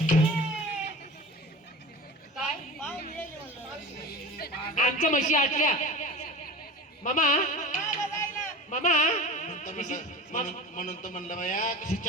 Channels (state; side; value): normal; both; correlation 0.34